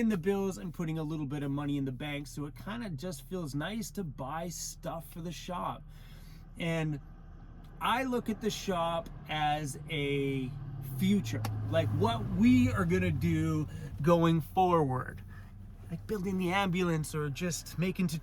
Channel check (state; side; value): identical; both; correlation 1.00